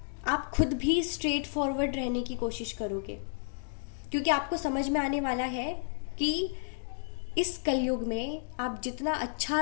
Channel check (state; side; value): silent; right; digital silence